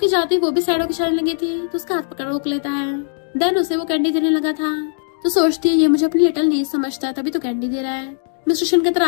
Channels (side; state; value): right; silent; digital silence